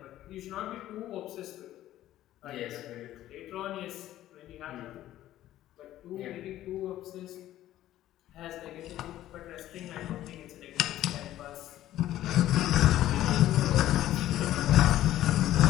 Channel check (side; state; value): right; quieter; 13.6 dB